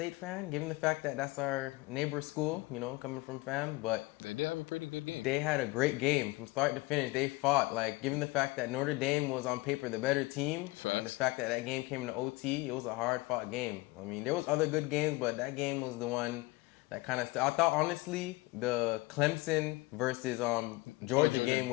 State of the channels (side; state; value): right; quieter; 21.7 dB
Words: fan, given the fact that that's our neighbor school, coming from FAM, but Yeah, pretty good game. they had a great game from start to finish. They fought, like, given the fact that Notre Dame was on paper the better team, and the fact that that game came into OT, it was a hard-fought game. I mean, there was other good games, but that game was the one that kind of, I thought, honestly, the Clemson versus Georgia game